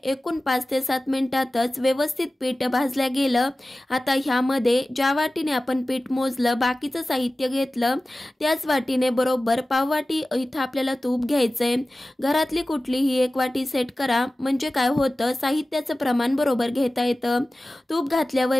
एकूण 5 ते 7 मिनिटातच व्यवस्थित पीठ भाजल्या गेलं. आता ह्यामध्ये ज्या वाटीने आपण पीठ मोजलं, बाकीचं साहित्य घेतलं, त्याच वाटीने बरोबर पाव वाटी इथं आपल्याला तूप घ्यायचंय. घरातली कुठलीही 1 वाटी सेट करा, म्हणजे काय होतं, साहित्याचं प्रमाण बरोबर घेता येतं. तूप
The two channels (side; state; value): both; normal; correlation 0.96